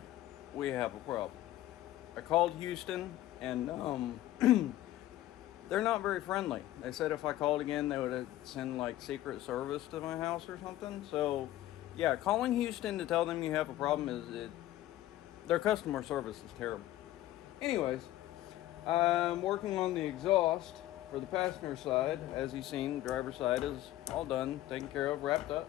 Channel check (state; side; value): quieter; right; 14.6 dB